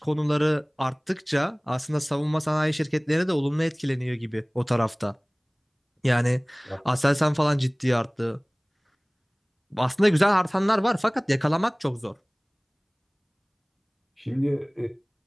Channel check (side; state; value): both; identical; correlation 1.00